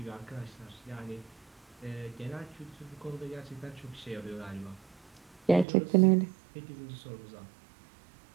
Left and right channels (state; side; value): drops out; left; at 5.7 s